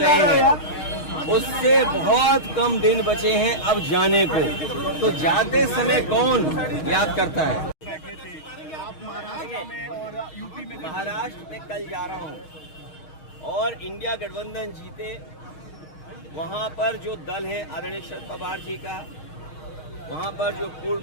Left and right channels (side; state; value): right; late; 6.4 ms